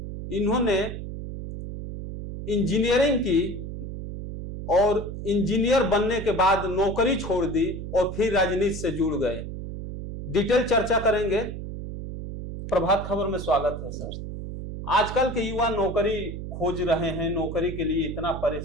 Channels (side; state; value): right; noise; hum, 8 dB below the sound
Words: इन्होंने इंजीनियरिंग की और इंजीनियर बनने के बाद नौकरी छोड़ दी और फिर राजनीति से जुड़ गए। डिटेल चर्चा करेंगे। प्रभात खबर में स्वागत है सर। आजकल के युवा नौकरी खोज रहे हैं, नौकरी के लिए इतना